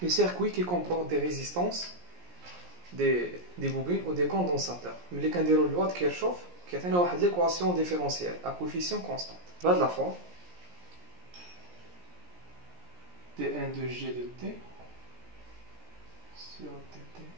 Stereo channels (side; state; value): left; late; 17 ms